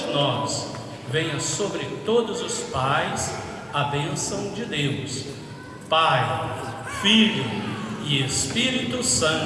nós, venha sobre todos os pais a bênção de Deus, Pai, Filho e Espírito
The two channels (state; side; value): identical; both; correlation 1.00